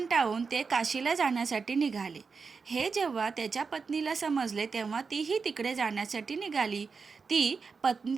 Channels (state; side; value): quieter; left; 5.0 dB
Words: ते काशीला जाण्यासाठी निघाले. हे जेव्हा त्याच्या पत्नीला समजले तेव्हा तीही तिकडे जाण्यासाठी निघाली. ती